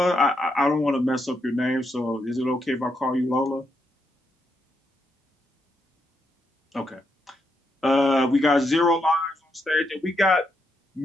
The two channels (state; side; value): normal; both; correlation 0.80